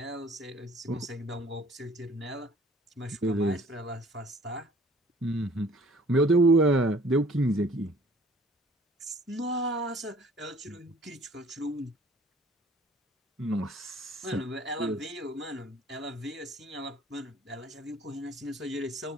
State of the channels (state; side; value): normal; both; correlation 0.54